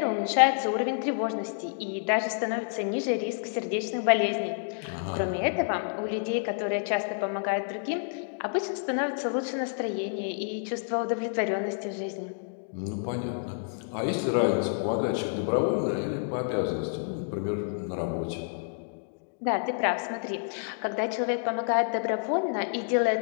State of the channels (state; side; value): silent; right; digital silence